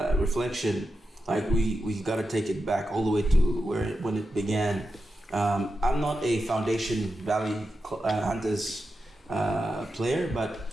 like we got to take it back all the way to when it began. I'm not a Foundation Valley Hunters player,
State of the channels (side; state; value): both; normal; correlation 0.89